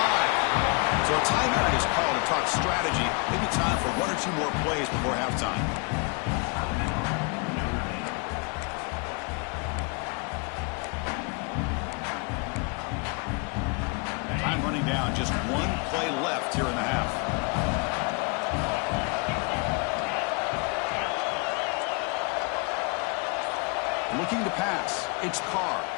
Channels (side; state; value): right; quieter; 32.1 dB